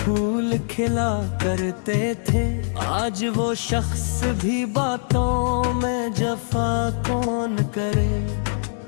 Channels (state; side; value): silent; right; 63 dB below the other